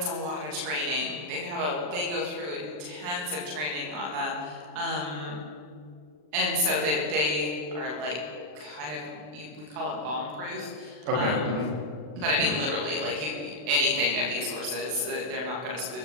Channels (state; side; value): late; left; 40 ms